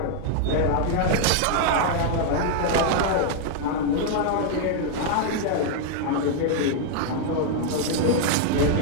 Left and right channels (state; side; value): different; both; correlation 0.00